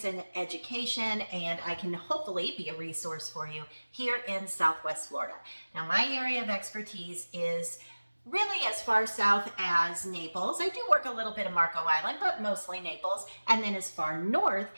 and education, and I can hopefully be a resource for you here in Southwest Florida. Now, my area of expertise is really as far south as Naples. I do work a little bit of Marco Island, but mostly Naples, and then as far north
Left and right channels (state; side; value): inverted; both; correlation -1.00